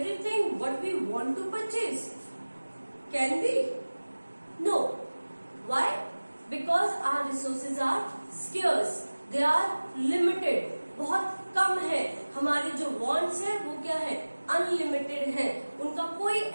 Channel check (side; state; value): both; inverted; correlation -1.00